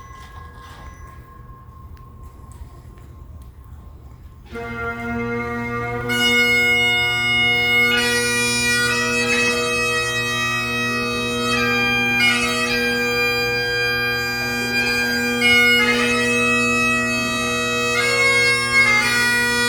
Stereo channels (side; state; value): both; identical; correlation 1.00